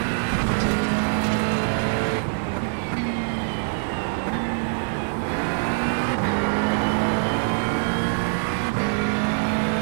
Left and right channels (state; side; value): silent; left; 63 dB below the other